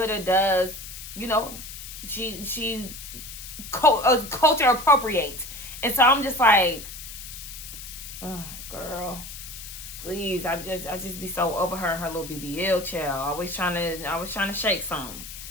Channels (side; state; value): left; noise; hiss, 11 dB below the sound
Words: does, she culture appropriates. And so I'm just like, oh, girl, please. I just be so over her and her little BBL child. Always trying to shake something.